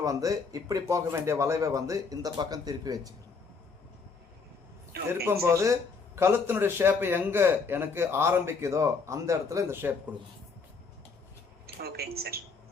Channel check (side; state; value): right; quieter; 4.8 dB